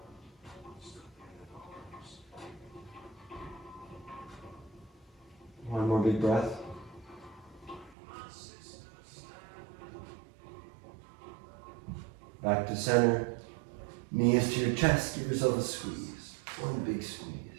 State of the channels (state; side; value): drops out; left; at 8.0 s